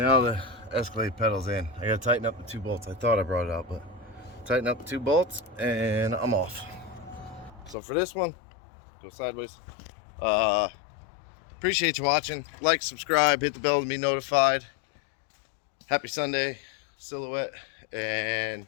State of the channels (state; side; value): drops out; right; at 7.8 s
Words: the Escalade pedal's in. I gotta tighten up the 2 bolts. I thought I brought it out, but tighten up the 2 bolts and I'm off. So for this one, go sideways. Appreciate you watching. Like, subscribe, hit the bell to be notified. Happy Sunday, Silhouette, and